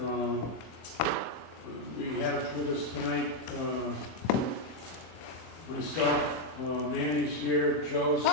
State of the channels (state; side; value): late; right; 24 ms